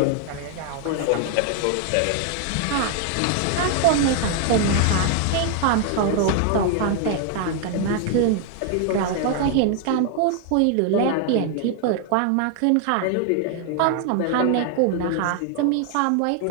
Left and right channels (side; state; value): both; different; correlation 0.00